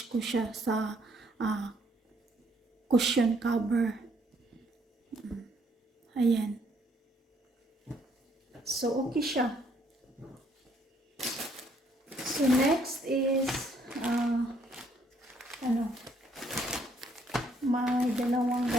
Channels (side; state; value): both; normal; correlation 0.67